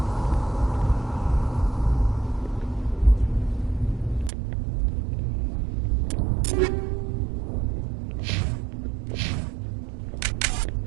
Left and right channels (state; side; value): drops out; left; at 4.3 s